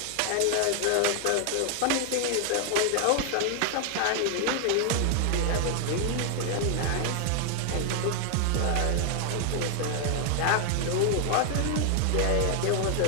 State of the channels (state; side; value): different; both; correlation 0.00